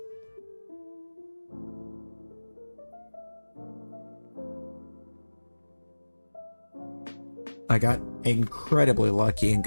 I got incredibly lucky and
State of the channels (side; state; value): both; inverted; correlation -1.00